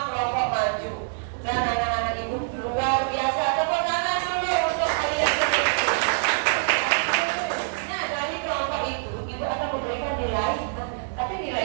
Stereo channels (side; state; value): left; silent; digital silence